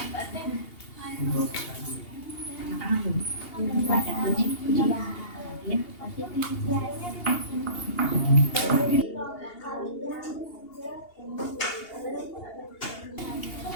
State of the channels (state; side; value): late; right; 2.8 ms